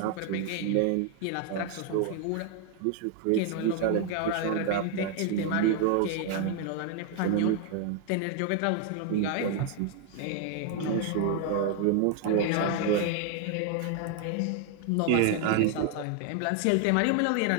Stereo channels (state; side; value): different; both; correlation 0.00